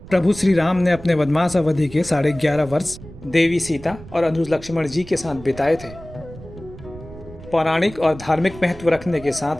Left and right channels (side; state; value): right; noise; rumble, 17 dB below the sound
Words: प्रभु श्री राम ने अपने वनवास अवधि के 11.5 वर्ष देवी सीता और अनुज लक्ष्मण जी के साथ बिताए थे। पौराणिक और धार्मिक महत्व रखने के साथ